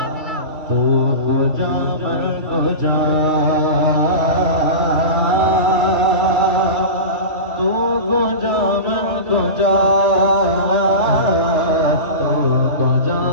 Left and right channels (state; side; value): late; left; 2.6 ms